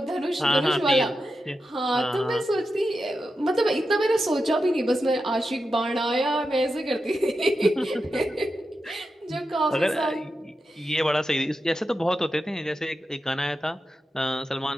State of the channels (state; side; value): normal; both; correlation 0.89